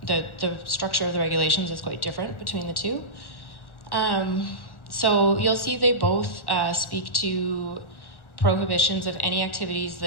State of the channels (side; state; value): right; late; 1.4 ms